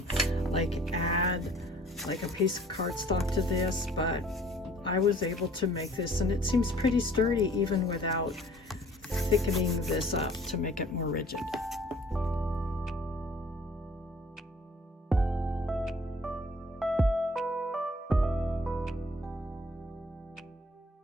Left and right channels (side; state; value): both; normal; correlation 0.54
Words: add like a piece of cardstock to this, but I was able to make this, and it seems pretty sturdy even without thickening this up to make it more rigid.